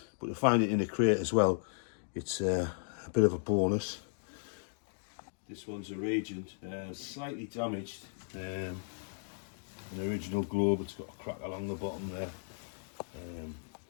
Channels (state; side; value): silent; right; digital silence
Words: but to find it in a crate as well, it's a bit of a bonus. This one's a Regent, slightly damaged. An original globe, it's got a crack along the bottom there,